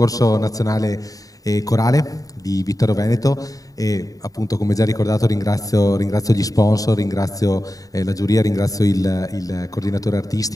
nazionale corale di Vittorio Veneto e appunto, come già ricordato, ringrazio gli sponsor, ringrazio la giuria, ringrazio il coordinatore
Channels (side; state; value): right; late; 0.17 ms